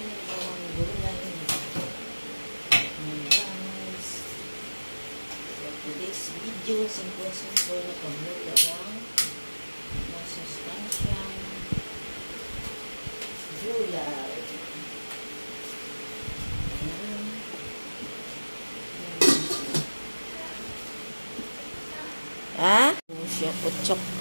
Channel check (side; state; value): both; inverted; correlation -1.00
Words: bawang gulay. Guys, for today's video, simple na pagluto lang masustansyang gulay. Siya putsok.